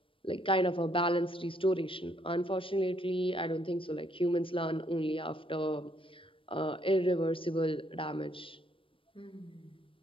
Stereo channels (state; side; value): late; right; 0.25 ms